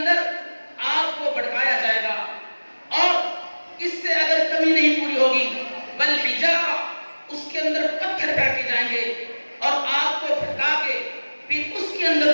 آگ کو بھڑکایا جائے گا، اور اس سے اگر کمی نہیں پوری ہوگی والحجارہ، اس کے اندر پتھر پھینکے جائیں گے، اور آگ کو بھڑکا کے پھر اس کے اندر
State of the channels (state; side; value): inverted; both; correlation -1.00